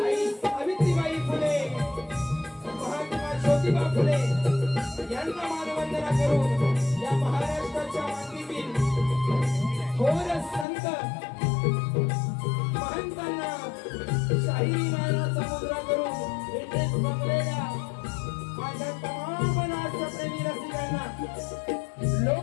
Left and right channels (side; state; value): right; drops out; at 10.7 s